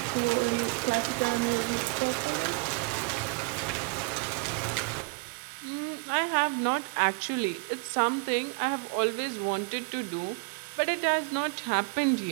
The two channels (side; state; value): left; quieter; 29.8 dB